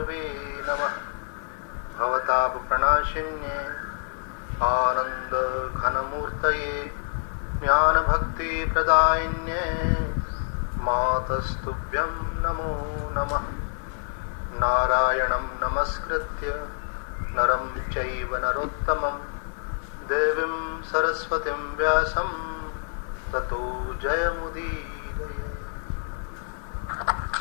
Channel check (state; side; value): silent; right; 60 dB below the other